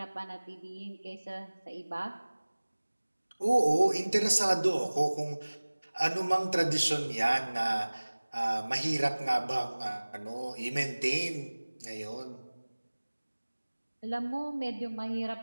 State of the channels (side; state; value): both; inverted; correlation -1.00